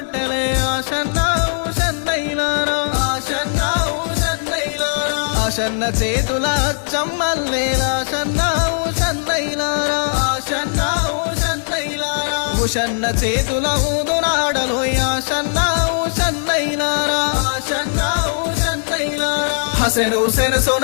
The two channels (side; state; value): right; silent; digital silence